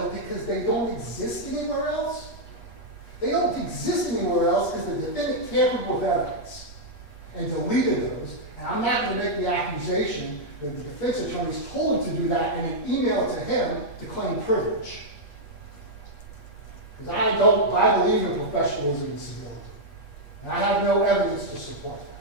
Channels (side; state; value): right; late; 8.3 ms